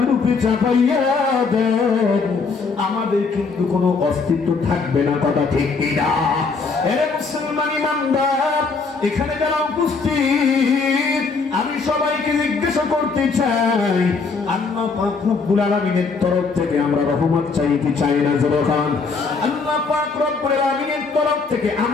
উপরে চাপাইয়া দেন, আমাদের কিন্তু কোনো অস্তিত্ব থাকবে না। কথা ঠিক কিনা? এ মুসলমান ইমানদার, এখানে যারা উপস্থিত, আমি সবাইকে জিজ্ঞাসা করতে চাই, আল্লাহ পাক রব্বুল আলামিনের তরফ থেকে আমরা রহমত চাই কি চাই না? জবান। আল্লাহ পাক রব্বুল আলামিনের তরফ থেকে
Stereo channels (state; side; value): quieter; right; 4.6 dB